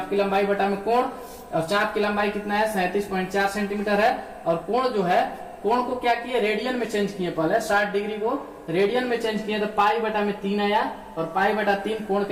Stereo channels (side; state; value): both; identical; correlation 1.00